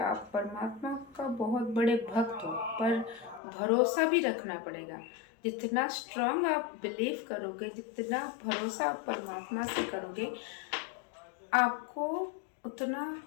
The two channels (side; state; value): right; drops out; at 3.4 s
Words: परमात्मा का बहुत बड़े भक्त हो, पर भरोसा भी रखना पड़ेगा। जितना स्ट्रांग आप बिलीव करोगे, जितना भरोसा आप परमात्मा से करोगे, आपको उतना